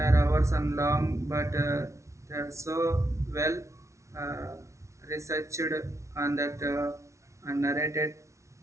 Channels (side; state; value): left; late; 0.14 ms